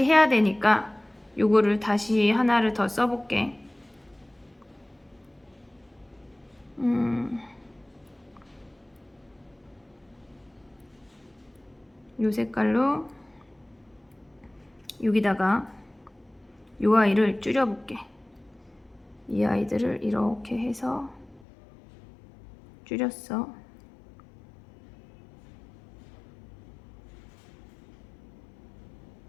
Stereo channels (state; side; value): drops out; right; at 21.4 s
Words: 해야 되니까 요거를 다시 하나를 더 써볼게. 요 색깔로 여기다가 요 아이를 줄여볼게. 이 아이들을 이렇게 해서 줄였어.